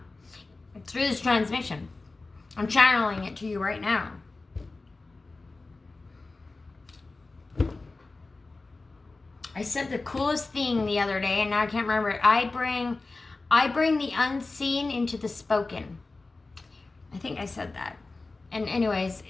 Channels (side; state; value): right; quieter; 3.5 dB